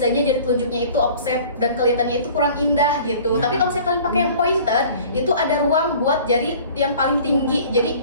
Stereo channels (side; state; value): both; inverted; correlation -0.47